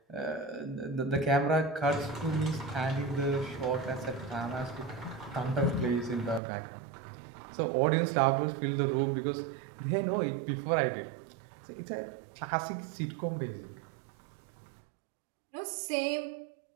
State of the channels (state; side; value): drops out; left; at 6.4 s